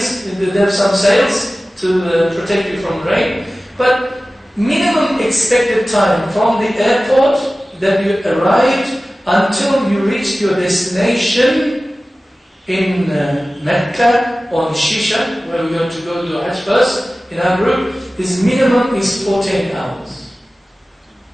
they have some sails to protect you from rain. But minimum expected time from the airport that you arrived until you reached your destination in Mecca or in Shisha, where we're going to go to Hajj first in our group, is minimum is 14 hours.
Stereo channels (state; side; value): normal; both; correlation 0.96